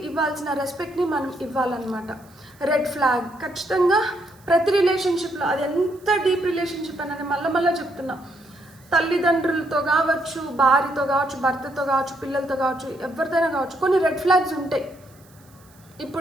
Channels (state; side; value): noise; right; hiss, 29 dB below the sound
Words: ఇవ్వాల్సిన రెస్పెక్ట్ని మనం ఇవ్వాలన్నమాట. రెడ్ ఫ్లాగ్ ఖచ్చితంగా ప్రతి రిలేషన్షిప్లో, అది ఎంత డీప్ రిలేషన్షిప్ అని మళ్ళీ చెప్తున్నా, తల్లిదండ్రులతో కావచ్చు, భార్యతో కావచ్చు, భర్తతో కావచ్చు, పిల్లలతో కావచ్చు, ఎవరితోనైనా కావచ్చు, కొన్ని రెడ్ ఫ్లాగ్స్ ఉంటాయి.